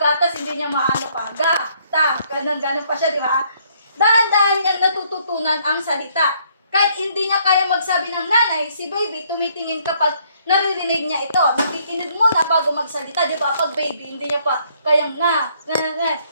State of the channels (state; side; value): inverted; both; correlation -0.67